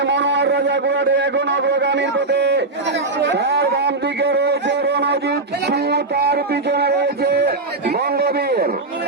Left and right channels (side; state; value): left; quieter; 3.3 dB